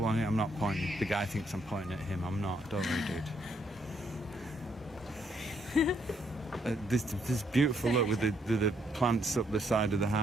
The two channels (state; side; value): normal; both; correlation 0.72